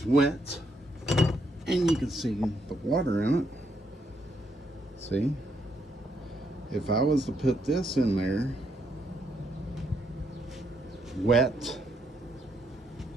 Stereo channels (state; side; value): normal; both; correlation 0.75